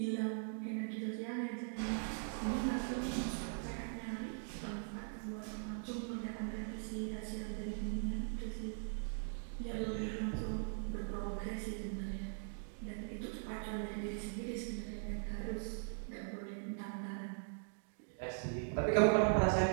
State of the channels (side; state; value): left; silent; digital silence